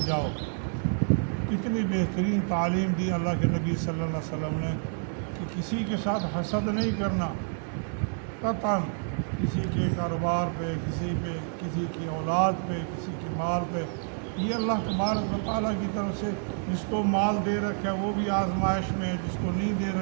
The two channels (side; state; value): left; silent; 59 dB below the other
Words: جاؤ۔ کتنی بہترین تعلیم دی اللہ کے نبی صلی اللہ علیہ وسلم نے کہ کسی کے ساتھ حسد نہیں کرنا، قطعاً کسی کے کاروبار پہ، کسی کی اولاد پہ، کسی کے مال پہ۔ یہ اللہ تبارک و تعالیٰ کی طرف سے جس کو مال دے رکھا ہے وہ بھی آزمائش میں ہے، جس کو نہیں دے